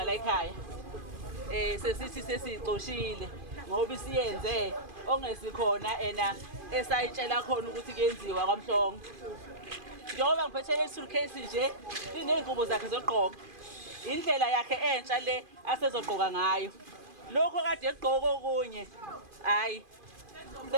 la ekhaya sesithi sesixoshile ngoba isiyenze ongesikhona ena esayitshela khona ukuthi kuyenziwa kwaMhlongo. Njengoba ngiphethe le suitcase nje iney'ngubo zakhe zokugqoka, indlela yakhe entsha le asezogqoka ngayo. Lokho kade egqoka okunye hayi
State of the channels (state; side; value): late; left; 2.5 ms